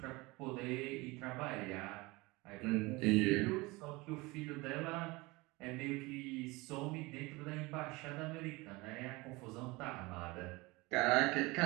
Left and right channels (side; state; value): left; quieter; 23.2 dB